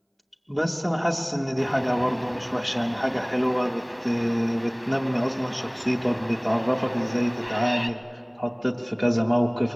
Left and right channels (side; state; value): both; identical; correlation 1.00